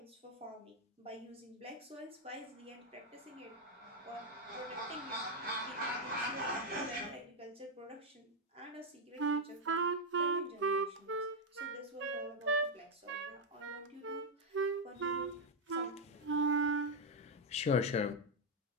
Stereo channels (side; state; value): both; normal; correlation 0.02